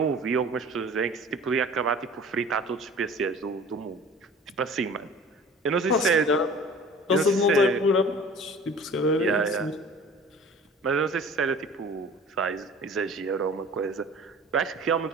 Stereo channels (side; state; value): both; normal; correlation 0.44